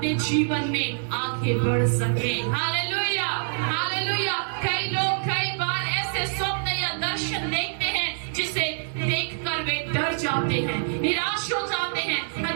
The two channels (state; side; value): silent; left; digital silence